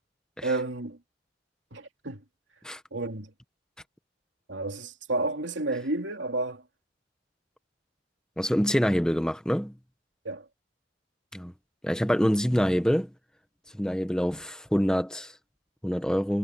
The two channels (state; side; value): normal; both; correlation 0.76